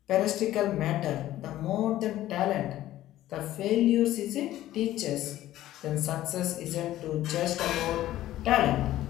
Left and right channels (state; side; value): quieter; right; 14.2 dB